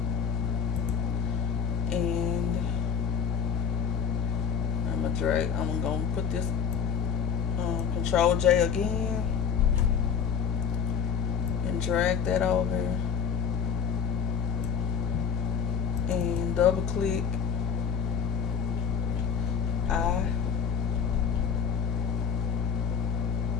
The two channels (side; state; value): right; quieter; 7.0 dB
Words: And I'm gonna put this Control J again and drag that over and double click. I